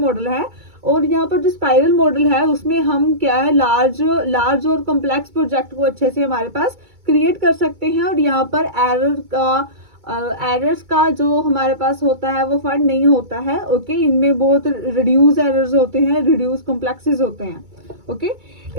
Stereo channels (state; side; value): late; left; 2.2 ms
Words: है। और यहाँ पर जो स्पाइरल मॉडल है उसमें हम क्या है लार्ज और कॉम्प्लेक्स प्रोजेक्ट को अच्छे से हमारे पास क्रिएट कर सकते हैं, और यहाँ पर एरर्स का जो हमारे पास होता है वो फाइंड नहीं होता है। ओके, इनमें बहुत रिड्यूस एरर्स होते हैं, रिड्यूस कॉम्प्लेक्सेस होते हैं। Okay,